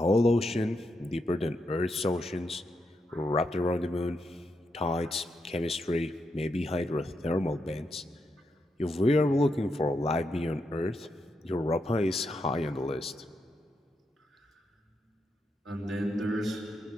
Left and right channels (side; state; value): both; normal; correlation 0.83